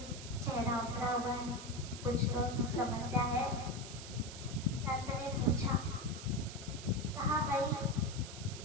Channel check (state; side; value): noise; right; hiss, 12 dB below the sound